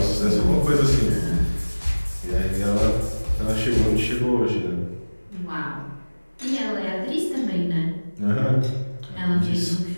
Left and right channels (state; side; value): inverted; both; correlation -1.00